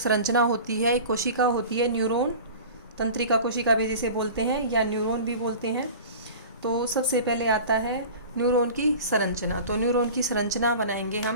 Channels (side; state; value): both; inverted; correlation -0.38